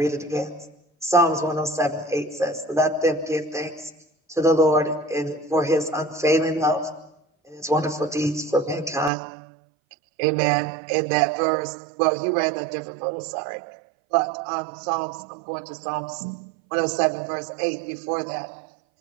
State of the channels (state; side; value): drops out; left; at 9.1 s